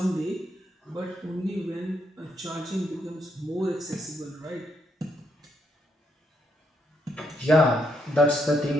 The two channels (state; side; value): normal; both; correlation 0.77